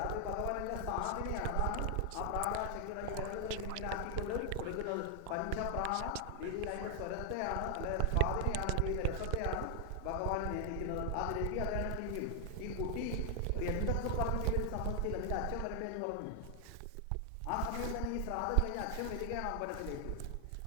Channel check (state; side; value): different; both; correlation 0.00